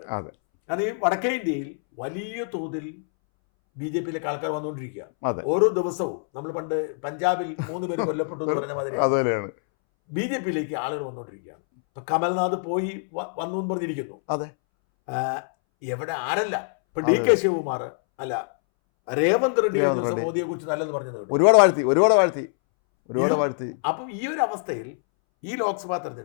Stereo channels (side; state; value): right; silent; 62 dB below the other